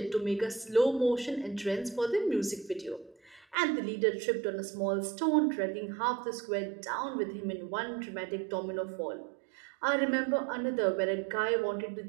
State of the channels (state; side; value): drops out; left; at 3.6 s